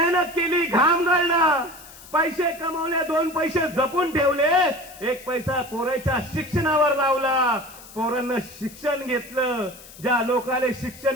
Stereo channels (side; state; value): left; noise; hiss, 19 dB below the sound